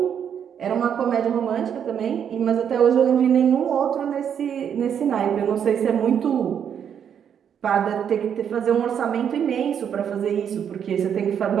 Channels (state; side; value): quieter; left; 8.3 dB